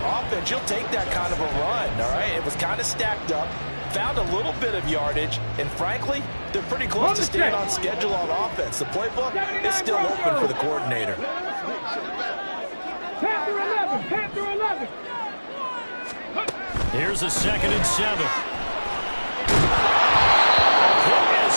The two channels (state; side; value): inverted; both; correlation -1.00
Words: offense, you'll take that kind of a run, all right? It was kind of stacked up, found a little bit of yardage, and frankly, they're pretty close to staying on schedule on offense. The playbook is still open for the coordinator. Panther 11, Panther 11. Here's a 2nd and 7.